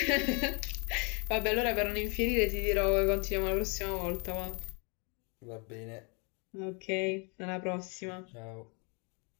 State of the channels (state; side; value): quieter; right; 34.3 dB